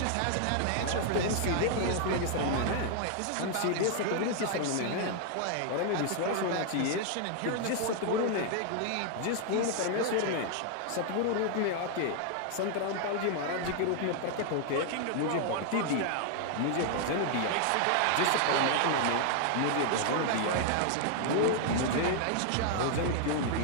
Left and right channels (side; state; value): both; different; correlation 0.00